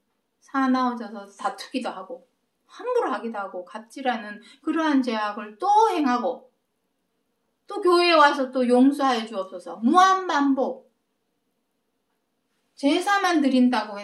사나워져서 다투기도 하고 함부로 하기도 하고 갑질하는 그러한 죄악을 또 행하고 또 교회에 와서 또 용서하여 주옵소서. 무한반복. 제사만 드린다고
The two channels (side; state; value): both; identical; correlation 1.00